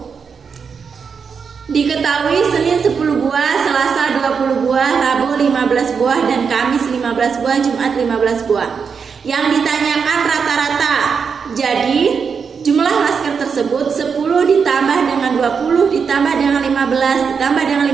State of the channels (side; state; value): left; quieter; 6.0 dB